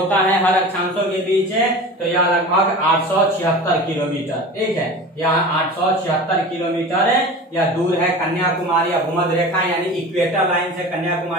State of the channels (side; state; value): both; normal; correlation 0.34